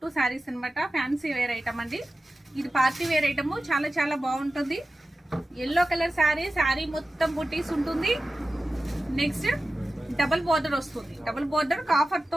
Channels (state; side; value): normal; both; correlation 0.94